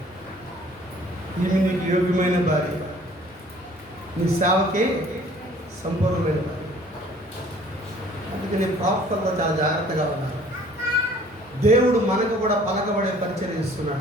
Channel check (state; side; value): normal; both; correlation 0.54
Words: ఈమె నీకు యోగ్యమైన భార్య, నీ సేవకే సంపూర్ణమైన భార్య. అందుకే నేను ప్రాప్తంలో చాలా జాగ్రత్తగా ఉన్నాను. దేవుడు మనకు కూడా పలకబడే పరిచయం